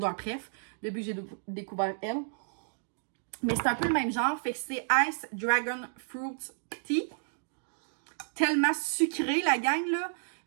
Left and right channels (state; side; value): silent; left; digital silence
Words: préf, depuis que j'ai découvert elle. Mais c'est un peu le même genre, fait que c'est Ice Dragon Fruit Tea. Tellement sucré, la gang, là.